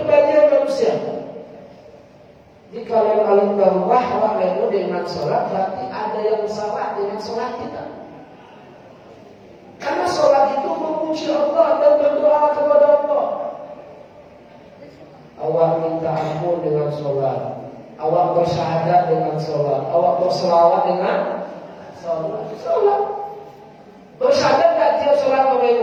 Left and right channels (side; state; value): both; identical; correlation 1.00